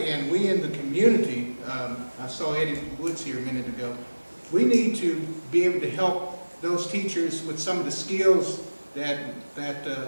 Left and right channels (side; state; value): both; inverted; correlation -1.00